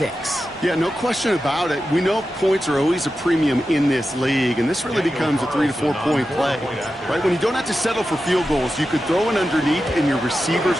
Yeah, no question about it. We know points are always a premium in this league, and this really becomes a 3 to 4 point play, right? When you don't have to settle for field goals, you could throw it underneath, and your receivers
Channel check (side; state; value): both; normal; correlation 0.91